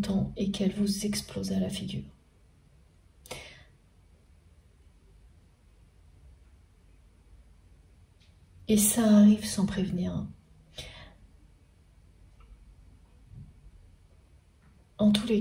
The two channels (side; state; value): both; identical; correlation 1.00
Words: et qu'elle vous explose à la figure. Et ça arrive sans prévenir. en tous les